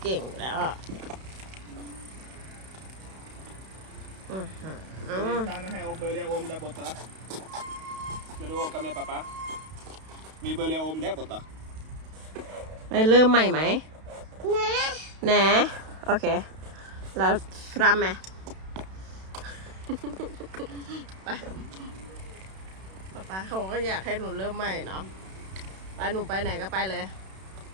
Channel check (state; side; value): late; left; 32 ms